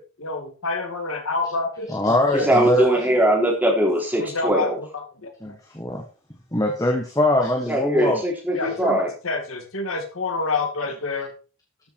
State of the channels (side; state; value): both; normal; correlation 0.44